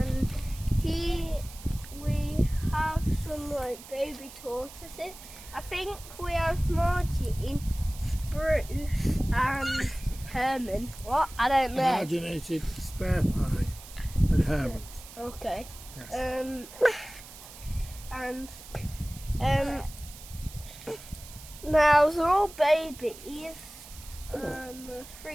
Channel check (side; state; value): right; noise; hiss, 17 dB below the sound